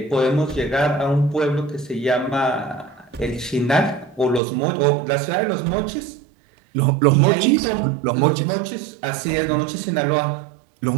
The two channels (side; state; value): left; drops out; at 4.4 s